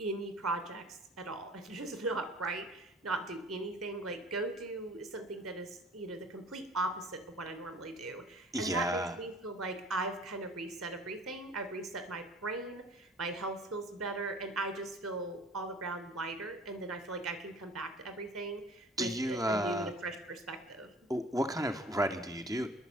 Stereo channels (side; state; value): both; normal; correlation 0.47